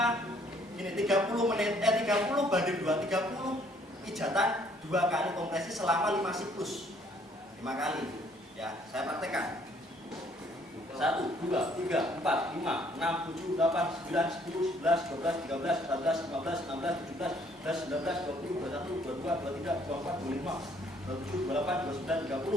ini 30 menit, 30 banding 2, 30 pijatan 2 kali kompresi selama 5 siklus. 5 kali. Ya, saya praktekkan. 1, 2, 3, 4, 5, 6, 7, 8, 9, 10, 11, 12, 13, 14, 15, 16, 17, 18, 19, 20, 21, 22, 23, 24, 25, 27, 28, 29,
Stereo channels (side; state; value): both; normal; correlation 0.63